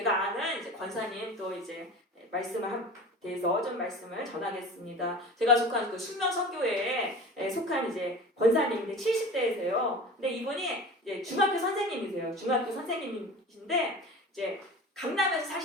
아는 이제 권사님 또 이제 말씀을 대해서 좀 말씀을 전하겠습니다. 제가 속한 그 숙명선교회에 속한 이제 권사님인데 70대이세요. 근데 이분이 이제 중학교 선생님이세요. 중학교 선생님이신데 이제 강남에서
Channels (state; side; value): normal; both; correlation 0.36